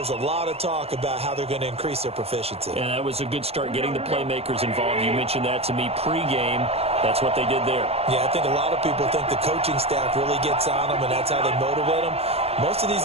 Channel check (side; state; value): left; late; 0.29 ms